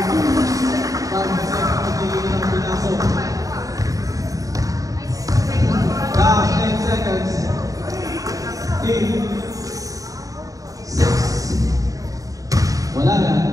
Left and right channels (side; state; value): left; late; 0.17 ms